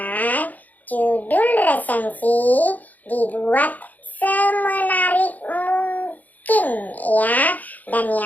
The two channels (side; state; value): right; late; 0.080 ms